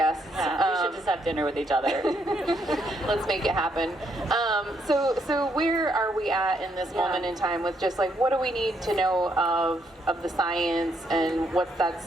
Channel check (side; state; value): both; normal; correlation 0.74